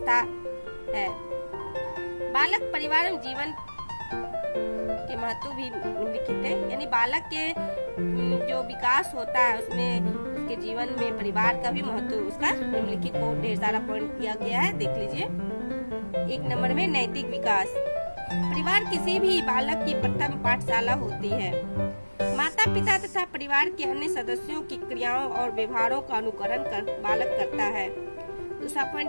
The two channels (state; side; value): inverted; both; correlation -1.00